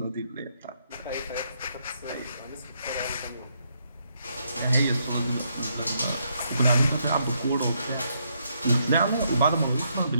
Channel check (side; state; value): both; inverted; correlation -0.76